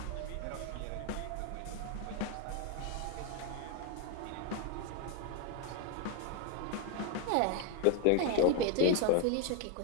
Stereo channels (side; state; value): both; different; correlation 0.01